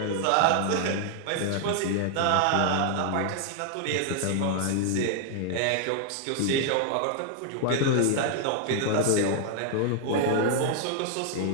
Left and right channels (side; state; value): both; different; correlation 0.00